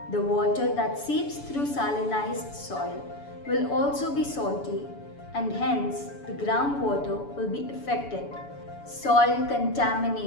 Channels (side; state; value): right; late; 7.0 ms